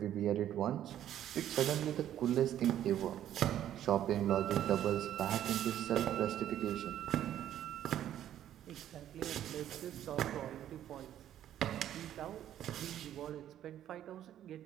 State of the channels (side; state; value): left; quieter; 11.3 dB